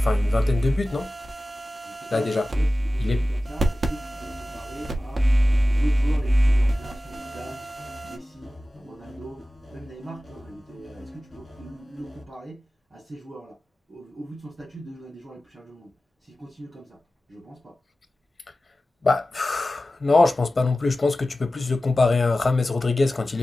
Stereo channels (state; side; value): normal; both; correlation 0.95